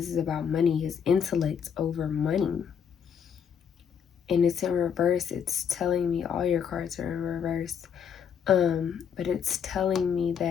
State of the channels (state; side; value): quieter; right; 7.5 dB